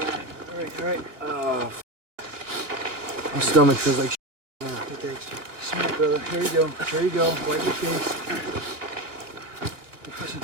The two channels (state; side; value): late; left; 2.8 ms